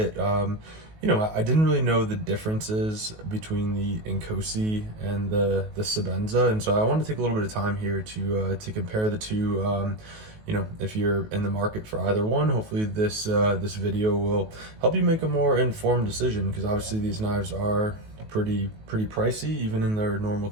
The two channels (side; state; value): left; late; 19 ms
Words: I didn't really know the differences between the Inkosi and the Sebenza. And so I wanted to take a little bit of time here to compare the two. If you're in the market for either one, hopefully this video will help you make a more informed decision, because obviously these knives are pretty pricey even in their normal